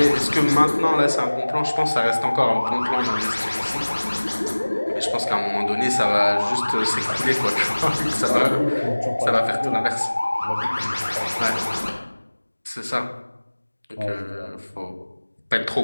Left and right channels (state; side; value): inverted; both; correlation -1.00